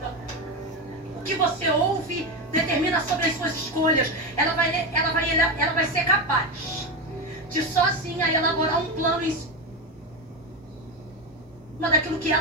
O que você ouve determina sobre as suas escolhas. Ela vai ser capaz de sozinha elaborar um plano em cima daquilo que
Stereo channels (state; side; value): normal; both; correlation 0.15